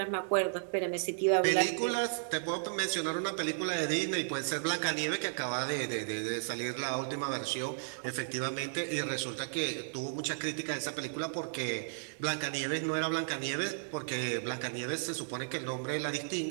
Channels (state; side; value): silent; left; digital silence